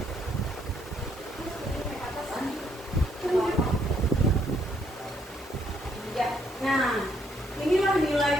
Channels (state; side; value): normal; both; correlation 0.71